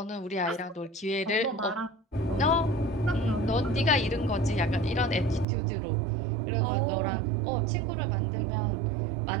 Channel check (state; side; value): drops out; left; at 5.5 s